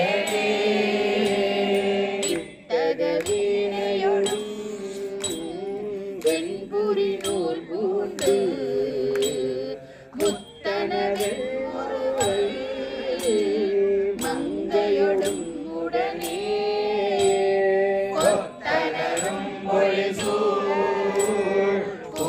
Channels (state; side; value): identical; both; correlation 1.00